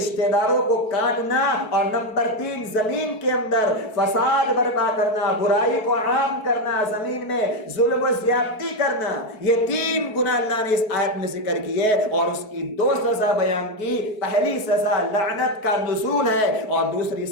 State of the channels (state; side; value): late; right; 4.7 ms